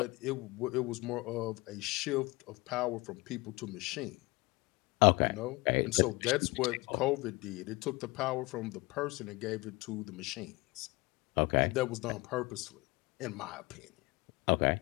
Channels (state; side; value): quieter; right; 23.5 dB